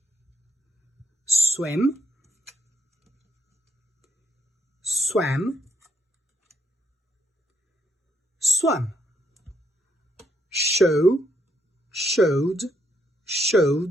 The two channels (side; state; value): both; normal; correlation 0.75